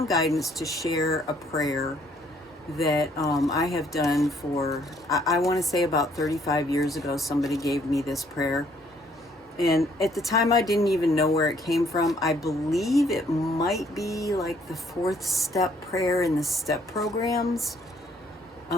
guidance to share a prayer that I have done for, I want to say about 35 years ago, somebody gave me this prayer. And at the time, I didn't even know where it came from. I believe it might be like the 4th step prayer in the step programs,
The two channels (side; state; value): both; normal; correlation 0.65